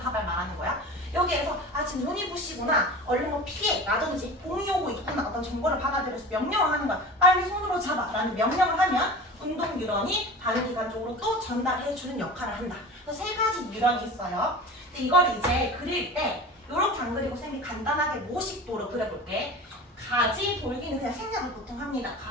말하는 거야. 여기에서 아 지금 눈이 부시구나, 얼른 뭐 피해 라든지 봄이 오고 있구나 어떤 정보를 받아들여서 명령을 하는 거야. 빨리 손으로 잡아 라는 명령을 하면 운동 뉴런이 반응기관 쪽으로 또 전달해주는 역할을 한다. 그래서 세 가지 뉴런이 있어요. 근데 이걸 이제 그릴 때 이렇게 안 그리고 쌤이 간단하게 모식도로 그려볼게. 가지 돌기는 그냥 생략을 보통 합니다.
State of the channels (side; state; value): both; normal; correlation 0.35